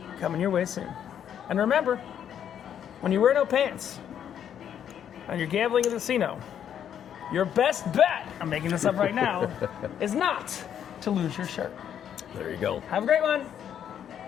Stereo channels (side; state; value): right; quieter; 9.3 dB